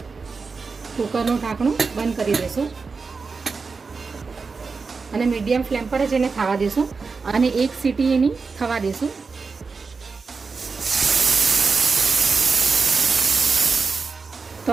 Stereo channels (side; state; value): left; quieter; 4.7 dB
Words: કુકરનું ઢાંકણું બંધ કરી દઈશું અને મીડિયમ ફ્લેમ પર જ એને થવા દઈશું અને એક સીટી એની થવા દઈશું.